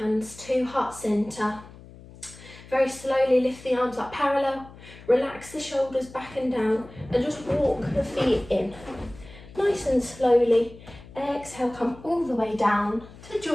to heart center. Very slowly lift the arms up parallel, relax the shoulders back and down, and just walk the feet in. Nice and slowly. Exhale, come all the way down to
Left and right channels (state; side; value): noise; left; hum, 19 dB below the sound